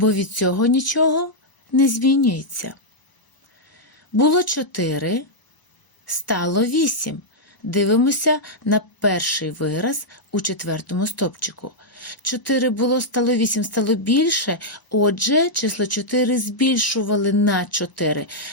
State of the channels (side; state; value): right; late; 1.0 ms